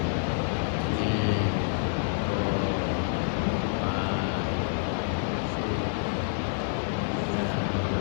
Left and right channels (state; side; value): silent; right; 59 dB below the other